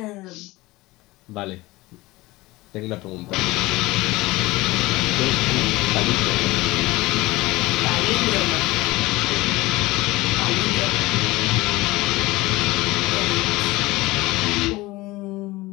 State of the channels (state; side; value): quieter; right; 20.3 dB